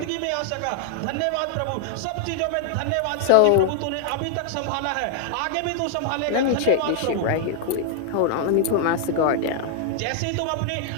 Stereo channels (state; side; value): different; both; correlation 0.00